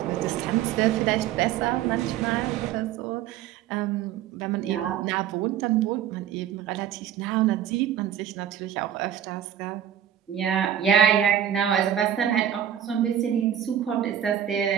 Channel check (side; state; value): left; quieter; 10.1 dB